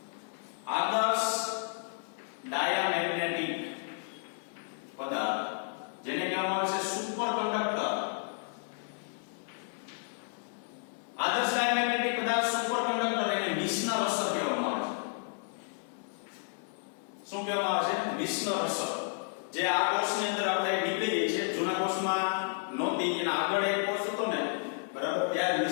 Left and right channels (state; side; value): silent; right; 57 dB below the other